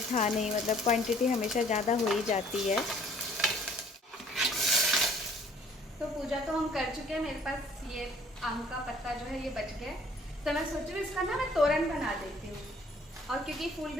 था नहीं, मतलब क्वांटिटी हमेशा ज़्यादा हो ही जाती है। तो पूजा तो हम कर चुके हैं, मेरे पास ये आम का पत्ता जो है ये बच गया, तो मैं सोच रही हूँ इसका ना मैं तोरन बना देती हूँ। और क्योंकि फूल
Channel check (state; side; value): normal; both; correlation 0.57